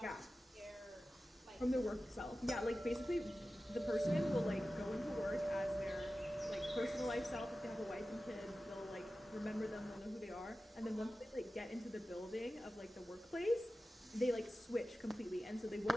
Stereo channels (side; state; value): both; normal; correlation 0.94